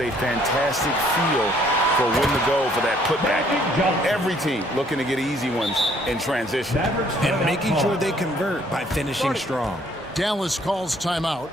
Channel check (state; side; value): normal; both; correlation 0.63